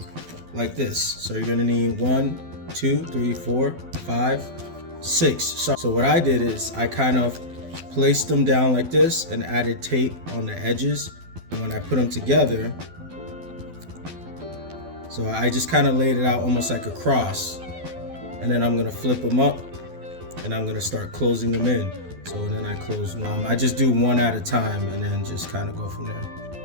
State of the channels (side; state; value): left; late; 12 ms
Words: like this. So you're gonna need 1, 2, 3, 4, 5, 6. So what I did is I kind of placed them down like this and added tape on the edges. And when I put them together, so I just kind of laid it out almost like a cross. And then I'm gonna flip them up and I'm gonna start closing them in. So then I close one. I just do one at a time and then just kind of go from there.